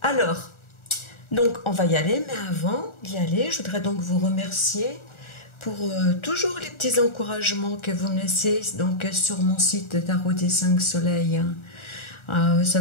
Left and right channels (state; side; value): late; right; 1.4 ms